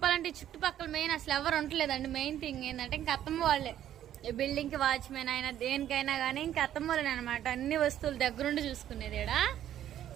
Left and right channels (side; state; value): left; quieter; 11.3 dB